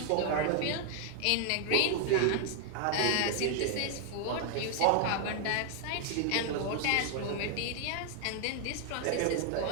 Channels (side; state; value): both; different; correlation 0.00